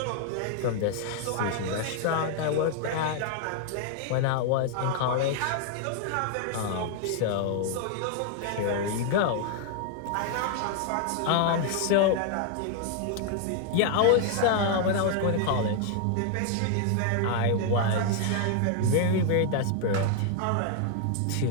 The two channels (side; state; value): both; different; correlation 0.00